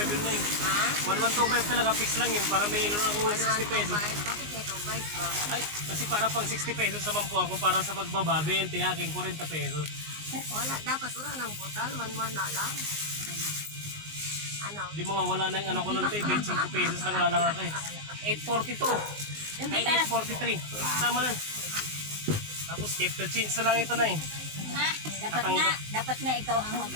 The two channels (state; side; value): late; left; 19 ms